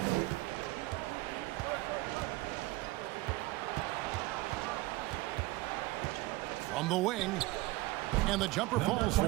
From the wing. And the jumper falls for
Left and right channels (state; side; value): quieter; left; 19.6 dB